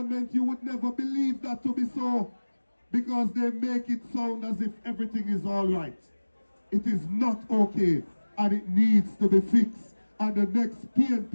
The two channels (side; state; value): both; inverted; correlation -1.00